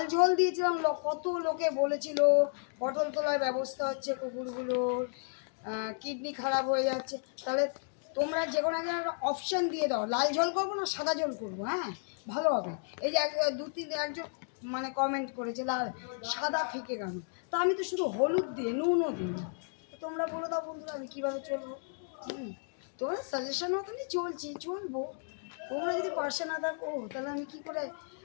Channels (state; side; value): silent; right; digital silence